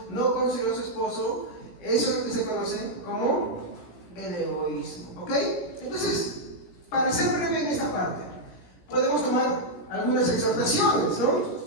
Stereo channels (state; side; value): late; right; 17 ms